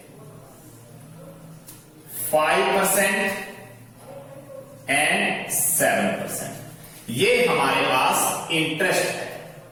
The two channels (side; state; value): both; identical; correlation 1.00